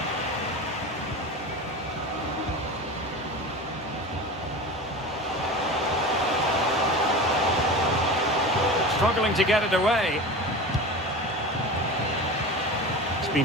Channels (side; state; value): both; normal; correlation 0.30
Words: Struggling to get it away.